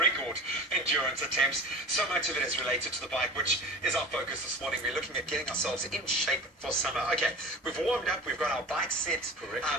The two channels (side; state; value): both; normal; correlation 0.35